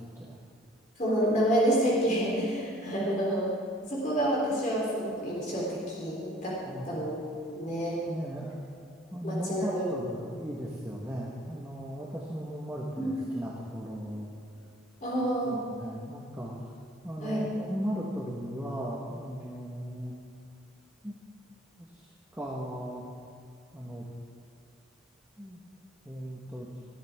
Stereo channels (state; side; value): normal; both; correlation 0.54